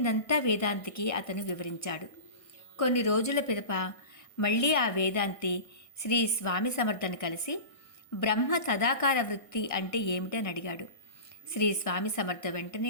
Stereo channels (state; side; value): late; right; 1.6 ms